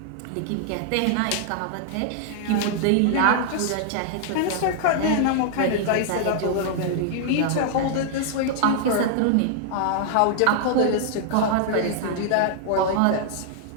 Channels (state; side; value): different; both; correlation -0.01